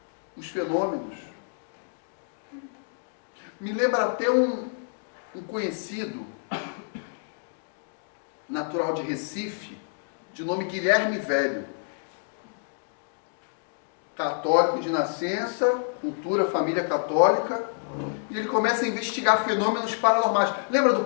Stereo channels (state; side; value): silent; right; digital silence